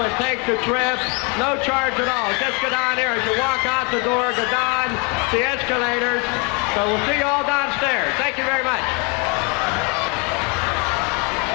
take the trip. No charge at all.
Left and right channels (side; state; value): right; quieter; 32.4 dB